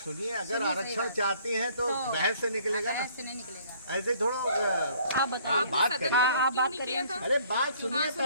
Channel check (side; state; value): both; inverted; correlation -0.59